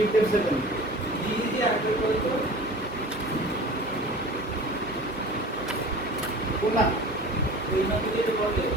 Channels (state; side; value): normal; both; correlation 0.39